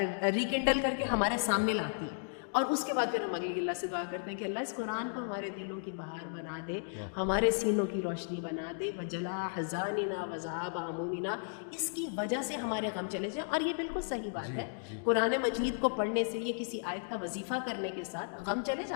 ریکنڈل کر کے ہمارے سامنے لاتی ہے. اور اس کے بعد پھر ہم اگلی اللہ سے دعا کرتے ہیں کہ اللہ اس قرآن کو ہمارے دلوں کی بہار بنا دے, ہمارے سینوں کی روشنی بنا دے, وجلا حزاننا وذهب همومنا, اس کی وجہ سے ہمارے غم چلے جائیں. اور یہ بالکل صحیح بات ہے, قرآن مجید کو پڑھنے سے, یہ کسی آیت کا وظیفہ کرنے کے ساتھ غم چلے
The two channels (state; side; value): silent; right; digital silence